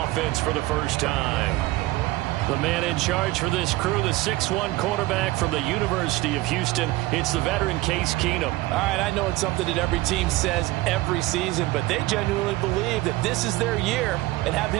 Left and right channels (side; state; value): left; quieter; 19.0 dB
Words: for the first time. The man in charge for this crew, the 6'1 quarterback from the University of Houston. It's the veteran Case Keenum. All right, I know it's something that every team says every season, but they genuinely believe that this is their year, and